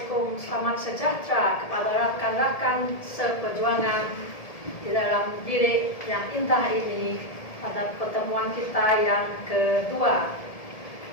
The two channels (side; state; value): right; late; 1.7 ms